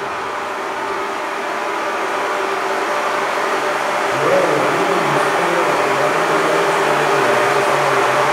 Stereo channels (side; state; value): both; identical; correlation 1.00